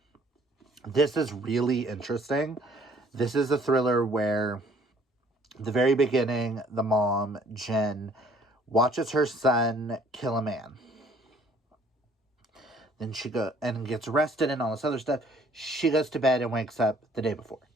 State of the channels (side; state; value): both; normal; correlation 0.59